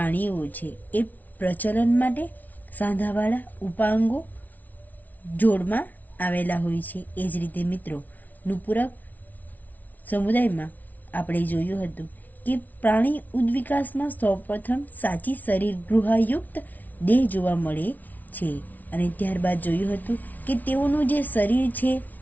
છે એ પ્રચલન માટે સાંધાવાળા ઉપાંગો જોડમાં આવેલા હોય છે। એ જ રીતે મિત્રો નુપુરક સમુદાયમાં આપણે જોયું હતું કે પ્રાણી ઉદ્વિકાસમાં સૌપ્રથમ સાચી શરીર ગૃહાયુક્ત દેહ જોવા મળે છે અને ત્યારબાદ જોયું હતું કે તેઓનું જે શરીર છે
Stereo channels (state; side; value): late; right; 0.078 ms